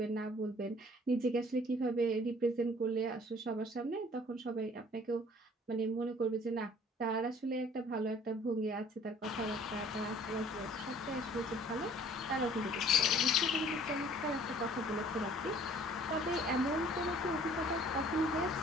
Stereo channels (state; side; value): normal; both; correlation 0.54